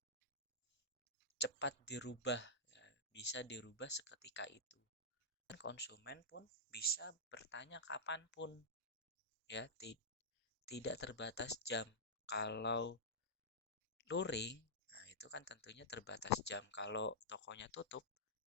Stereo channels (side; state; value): both; normal; correlation -0.13